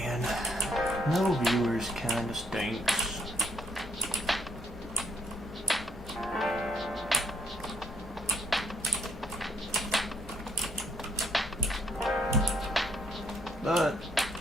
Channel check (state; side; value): normal; both; correlation 0.72